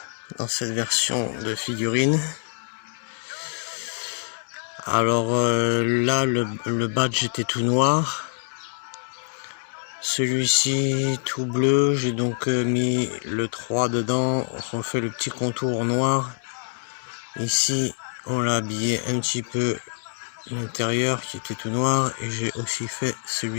dans cette version de figurine. Alors là le badge était tout noir, celui-ci tout bleu. J'ai donc mis le 3 dedans, on fait le petit contour noir. Ici on l'a habillé un petit peu l'intérieur qui était tout noir, et j'ai aussi fait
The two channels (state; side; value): silent; right; digital silence